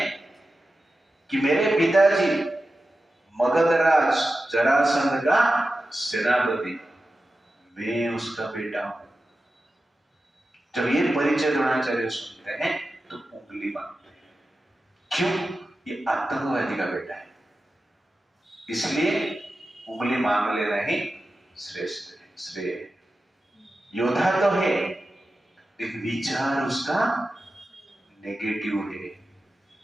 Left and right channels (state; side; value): normal; both; correlation 0.93